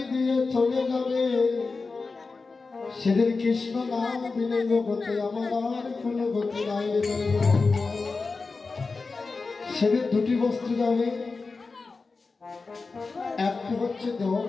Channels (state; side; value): quieter; right; 4.1 dB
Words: দিয়ে চলে যাবে সেদিন কৃষ্ণ নাম বিনে জগতে আমার আর কোনো গতি নাই সেদিন দুটি বস্তু যাবে একটি হচ্ছে